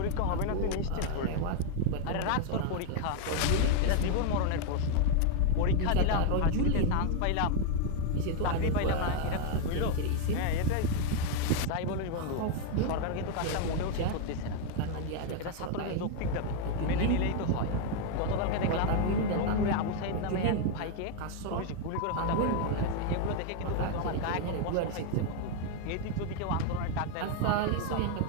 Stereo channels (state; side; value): different; both; correlation 0.00